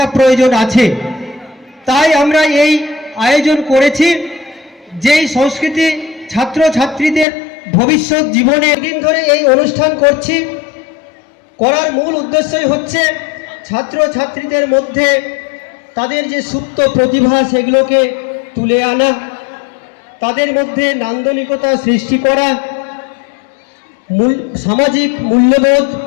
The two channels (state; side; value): drops out; right; at 7.2 s